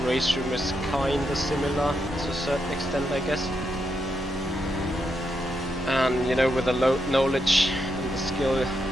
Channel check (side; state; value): both; normal; correlation 0.82